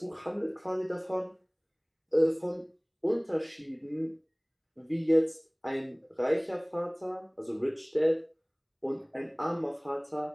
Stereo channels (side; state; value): both; identical; correlation 1.00